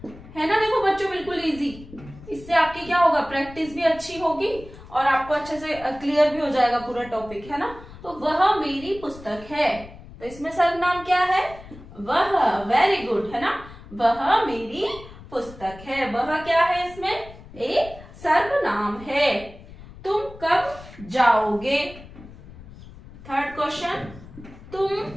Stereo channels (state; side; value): noise; left; rumble, 18 dB below the sound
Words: ना। देखो बच्चों, बिल्कुल इजी। इससे आपकी क्या होगा, प्रैक्टिस भी अच्छी होगी और आपको अच्छे से क्लियर भी हो जाएगा पूरा टॉपिक, है ना। तो वह मेरी पुस्तक है, तो इसमें सर्वनाम क्या है, वह। वेरी गुड, है ना। वह मेरी पुस्तक है, वह क्या है, इसमें एक सर्वनाम है। तुम कब जाओगे? थर्ड क्वेश्चन, तुम